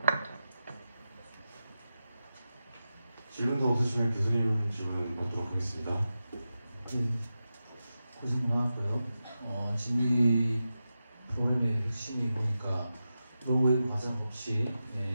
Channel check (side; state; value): both; inverted; correlation -0.91